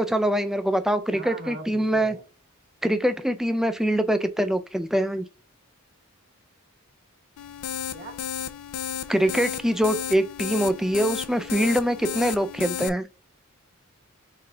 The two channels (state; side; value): normal; both; correlation 0.80